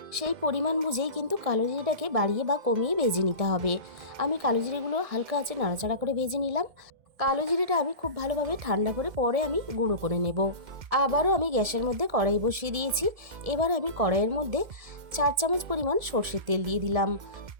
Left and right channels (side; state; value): left; late; 1.7 ms